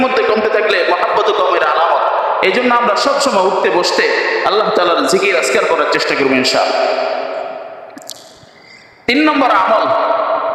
মধ্যে কমতে থাকলে মহাব্বত কমের আলামত। এই জন্য আমরা সবসময় উঠতে বসতে আল্লাহ তাআলার জিকির আজকার করার চেষ্টা করবো ইনশাআল্লাহ। 3 নম্বর আমল,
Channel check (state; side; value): identical; both; correlation 1.00